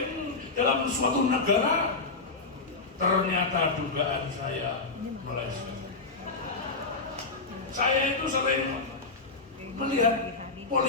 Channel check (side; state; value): right; quieter; 3.8 dB